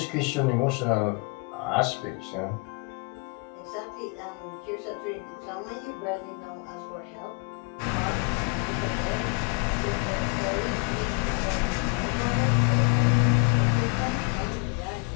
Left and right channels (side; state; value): right; quieter; 32.3 dB